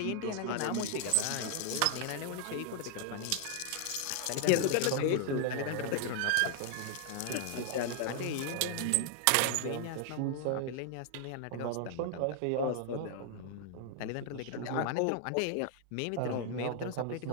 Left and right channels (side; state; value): both; different; correlation 0.00